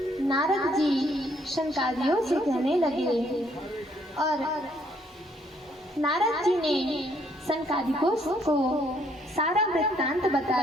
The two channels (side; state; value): both; normal; correlation 0.68